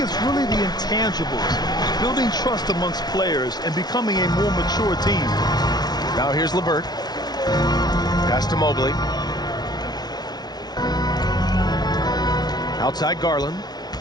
really the intangibles, building trust amongst players and becoming a more mature team. Now here's LeVert. Pass to Mobley. Outside Garland.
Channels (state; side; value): late; right; 0.19 ms